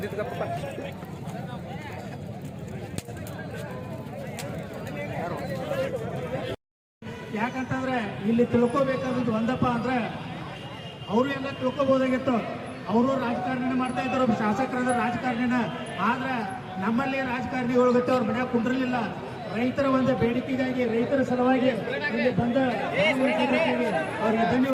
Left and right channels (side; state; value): both; identical; correlation 1.00